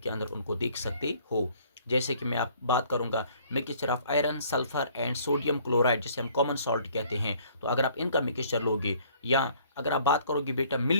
के अंदर उनको देख सकते हो। जैसे कि मैं आप बात करूंगा mixture of iron, sulphur and sodium chloride, जिसे हम कॉमन सॉल्ट कहते हैं। तो अगर आप इनका मिक्सचर लोगे, या अगर आप बात करोगे बेटा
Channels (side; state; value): both; inverted; correlation -0.59